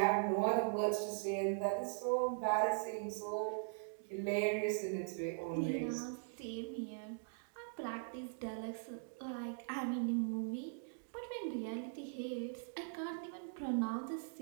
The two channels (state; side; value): silent; left; digital silence